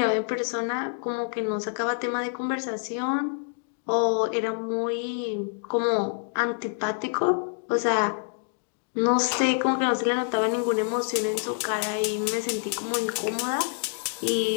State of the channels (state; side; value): silent; right; 60 dB below the other